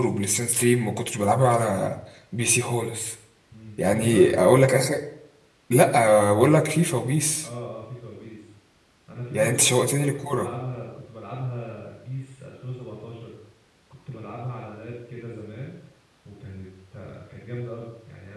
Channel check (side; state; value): both; identical; correlation 1.00